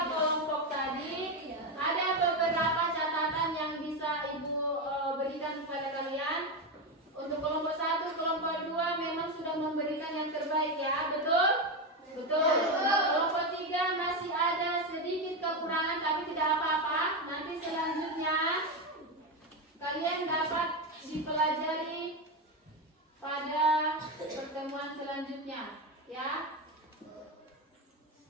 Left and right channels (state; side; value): normal; both; correlation 0.12